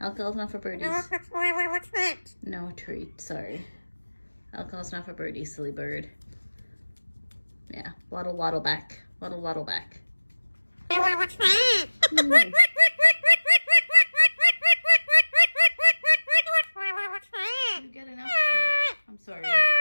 not for birdies. No treat, sorry. Alcohol's not for birdies, silly bird. Yeah, waddle back. Waddle back. What's that? Nice. You get enough treats. I'm sorry.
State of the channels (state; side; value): inverted; both; correlation -1.00